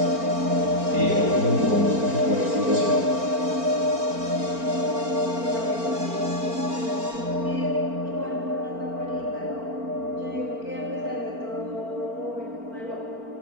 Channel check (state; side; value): late; left; 4.4 ms